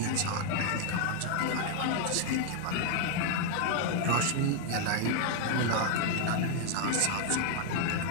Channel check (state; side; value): different; both; correlation 0.00